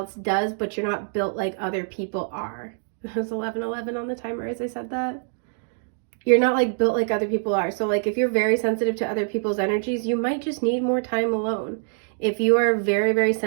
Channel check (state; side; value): silent; left; digital silence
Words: does, but you're not built like other people are. It was 11:11 on the timer as I said that. You're not like built like other people are. So like if you're very sensitive to other people's energies, you might just need more time alone. If you are very, very